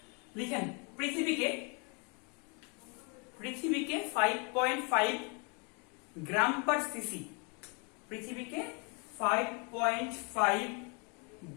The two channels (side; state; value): right; quieter; 34.0 dB